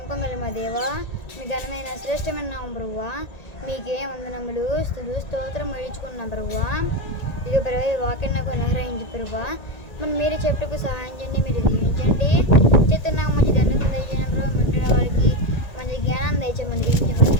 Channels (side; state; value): right; late; 1.9 ms